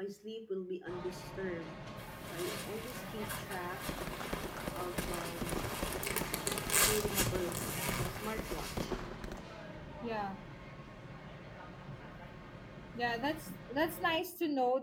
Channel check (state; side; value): identical; both; correlation 1.00